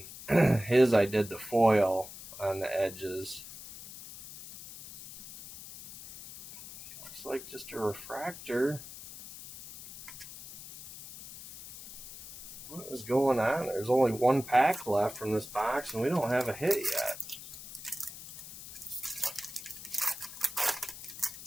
his I did the foil on the edges. Looks like just a refractor. What is going on? There's only one pack left from this box, and we don't have a hit yet.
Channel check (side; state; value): left; noise; hiss, 14 dB below the sound